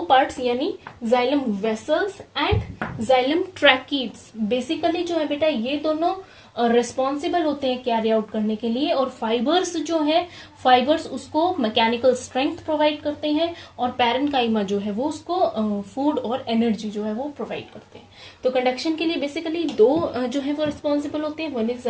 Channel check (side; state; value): both; identical; correlation 1.00